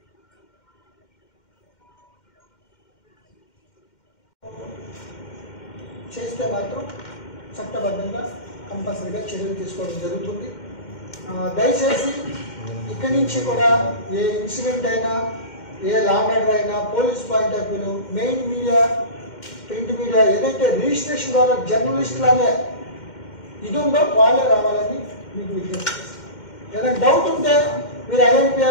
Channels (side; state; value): right; late; 2.1 ms